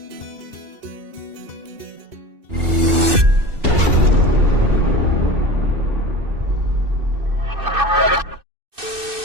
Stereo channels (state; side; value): late; left; 2.6 ms